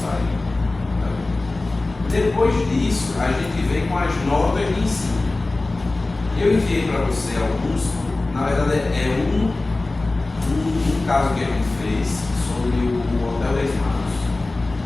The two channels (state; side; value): quieter; right; 3.1 dB